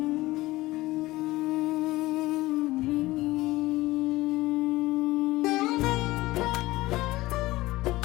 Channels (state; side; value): quieter; right; 18.7 dB